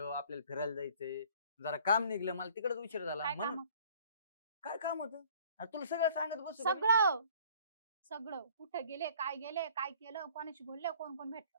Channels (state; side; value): inverted; both; correlation -0.54